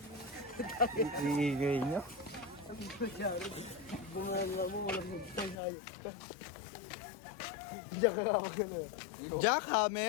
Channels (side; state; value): right; drops out; at 5.6 s